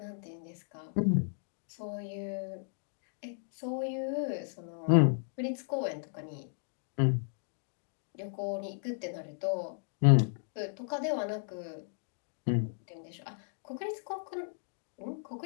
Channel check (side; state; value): right; silent; digital silence